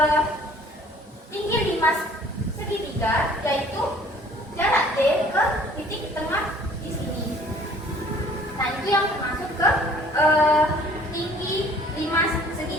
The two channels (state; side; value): normal; both; correlation 0.54